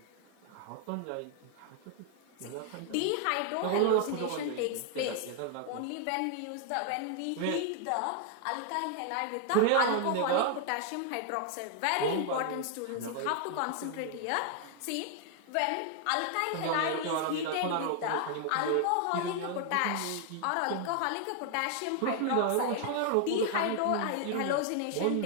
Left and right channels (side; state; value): both; different; correlation 0.00